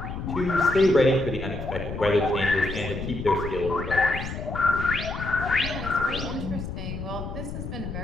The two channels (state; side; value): noise; left; rumble, 7 dB below the sound